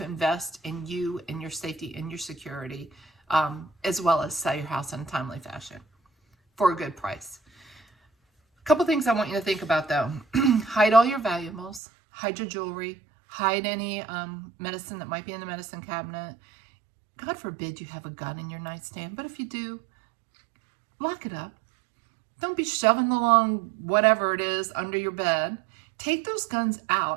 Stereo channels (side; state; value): left; drops out; at 11.8 s